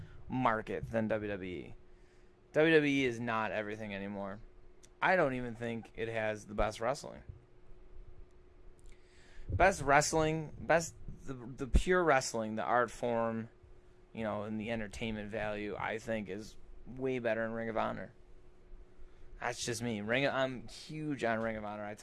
market than WWE. WWE is not everything anymore. I don't even think it has the best wrestling. The pure wrestling, the art form, and the entertainment value, I think is way better in Ring of Honor. That's just me. I'm huge on Ring of Honor. I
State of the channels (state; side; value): identical; both; correlation 1.00